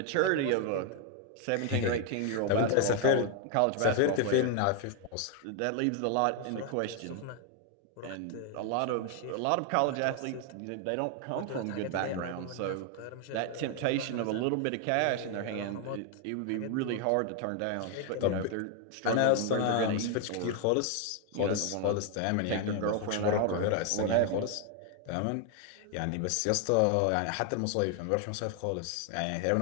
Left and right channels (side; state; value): both; different; correlation 0.01